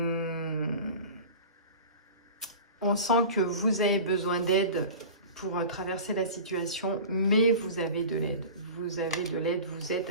sent que vous avez besoin d'aide pour traverser la situation, mais vous avez de l'aide. Vous avez de l'aide, vous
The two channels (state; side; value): inverted; both; correlation -0.37